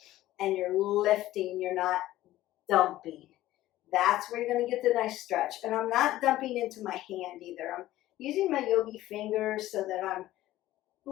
And you're lifting, you're not dumping. That's where you're going to get the nice stretch. And I'm not dumping into my hand either. I'm using my yogi fingers so that I'm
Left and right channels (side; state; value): right; quieter; 15.1 dB